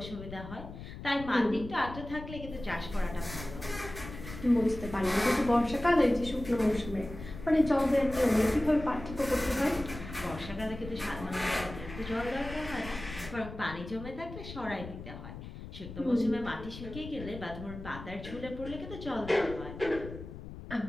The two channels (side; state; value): left; noise; rumble, 12 dB below the sound